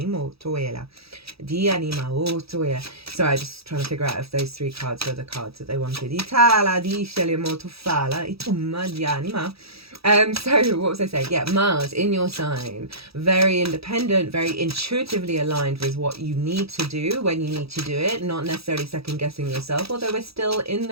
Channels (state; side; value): late; left; 0.77 ms